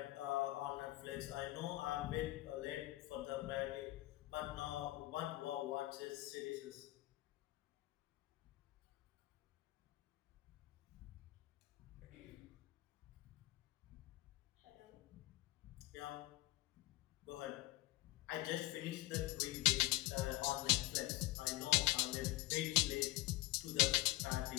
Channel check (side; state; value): right; quieter; 19.1 dB